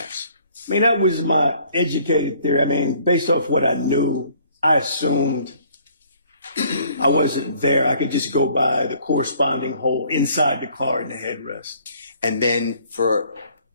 I mean, that was my educated theory. I mean, based off what I knew, I assumed I wasn't there. I could just go by the corresponding hole inside the car in the headrest. And then for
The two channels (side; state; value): both; inverted; correlation -0.60